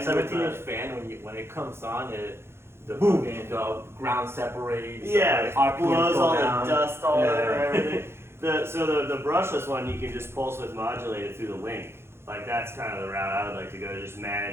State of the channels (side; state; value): left; late; 0.12 ms